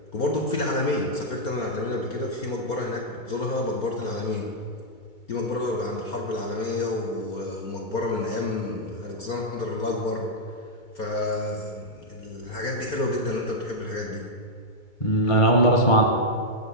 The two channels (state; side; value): late; right; 2.3 ms